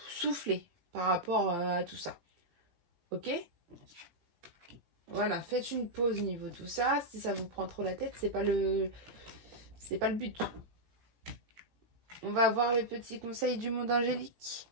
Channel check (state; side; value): late; left; 17 ms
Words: souffler par rapport à tout ça. Ok? Voilà, faites une pause niveau tout ça. Si ça vous prend trop la tête, c'est pas le but. On va voir les petits conseils du monde angélique